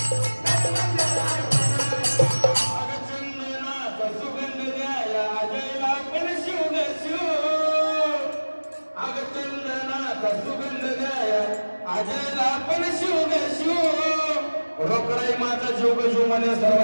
रोकडाई माझा जीव जीव मध्ये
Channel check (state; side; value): inverted; both; correlation -1.00